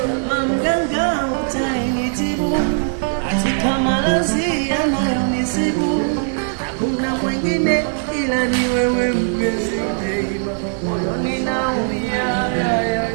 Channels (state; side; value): silent; left; digital silence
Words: kama mganga utainitibu, katika maradhi yanayonisibu. Hakuna mwingine ila ni wewe mpenzi, moyoni naumia.